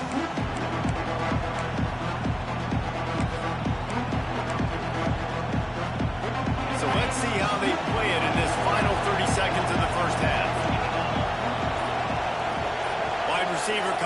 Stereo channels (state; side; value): identical; both; correlation 1.00